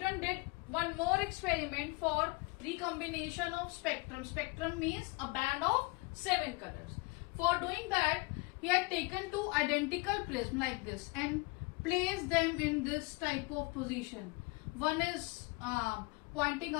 did one more experiment for recombination of spectrum. Spectrum means a band of 7 colors. For doing that, he had taken two identical prisms like this and placed them in this type of position. One is pointing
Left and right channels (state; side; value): quieter; right; 26.7 dB